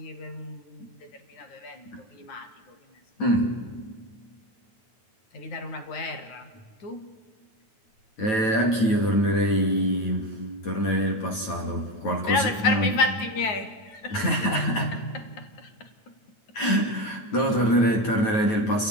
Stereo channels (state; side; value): late; right; 9.2 ms